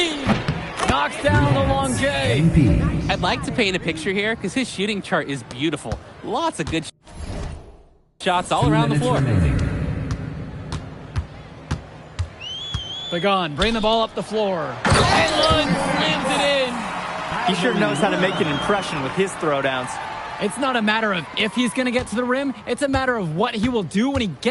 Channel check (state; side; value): identical; both; correlation 1.00